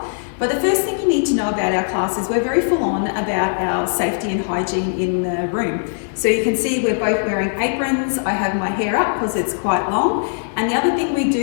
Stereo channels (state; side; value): silent; right; digital silence